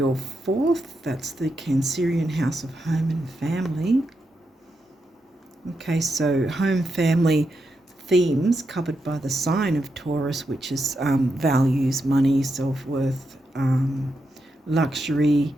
fourth. That's the Cancerian house of home and family. Okay, so home, family themes covered by the sign of Taurus, which is values, money, self-worth, luxury,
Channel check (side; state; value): both; normal; correlation 0.85